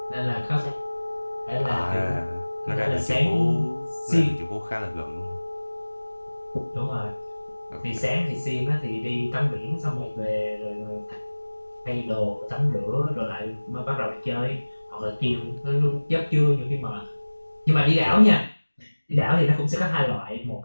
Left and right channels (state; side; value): inverted; both; correlation -1.00